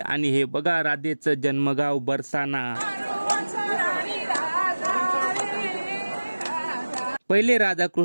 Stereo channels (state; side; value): inverted; both; correlation -1.00